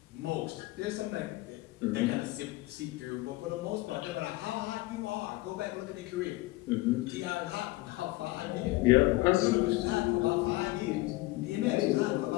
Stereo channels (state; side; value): quieter; right; 20.0 dB